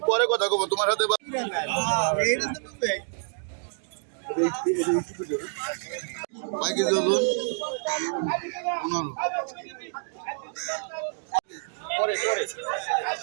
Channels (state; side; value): silent; left; digital silence